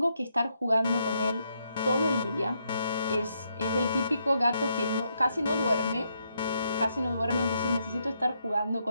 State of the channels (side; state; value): both; inverted; correlation -0.78